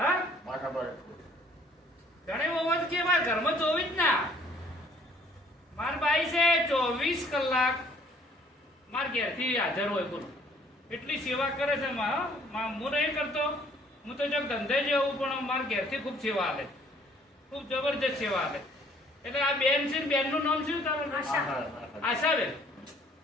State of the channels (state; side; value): normal; both; correlation 0.59